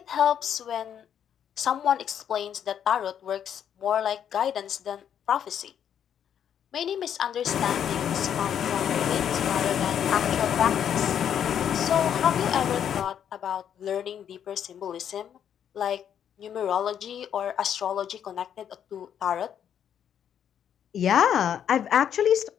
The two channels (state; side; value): quieter; right; 9.0 dB